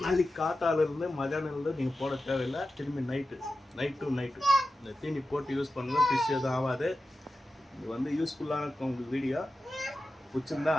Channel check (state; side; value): normal; both; correlation 0.92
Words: நாளைக்கு காத்தாலேருந்து மதியானம்லேருந்து நீங்கள் போட தேவையில்லை. திரும்பி நைட்டு இந்த தீனி போட்டு யூஸ் பண்ணுங்கள். ஃபிஷ் எதுவும் ஆகாது. இது வந்து யூஸ்ஃபுல்லான இருக்கும். உங்களுக்கு வீடியோ பிடிச்சிருந்தா